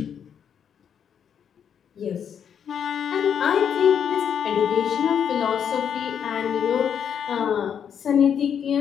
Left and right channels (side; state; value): right; quieter; 8.1 dB